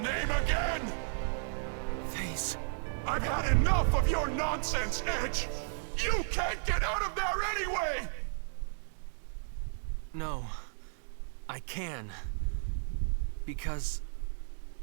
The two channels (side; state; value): left; silent; digital silence